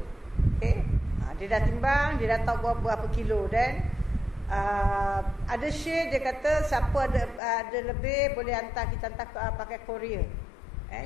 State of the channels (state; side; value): drops out; right; at 7.4 s